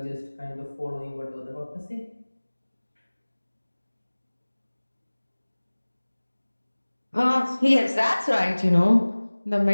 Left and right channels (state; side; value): inverted; both; correlation -1.00